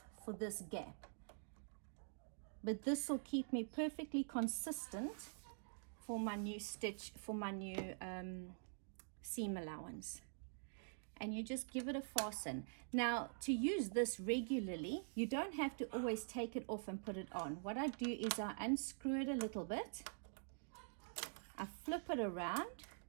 for this gap. But this will keep me perfectly consistent for my new stitch, for my new seam allowance. And you just give it a fasten. Now, to use this regularly, you don't have to always take it off and put it on. What I do is I unscrew it a little bit, I flip it around,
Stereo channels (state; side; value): silent; left; digital silence